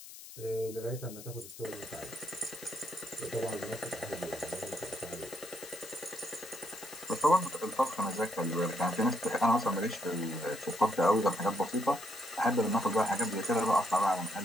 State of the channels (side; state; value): left; noise; hiss, 15 dB below the sound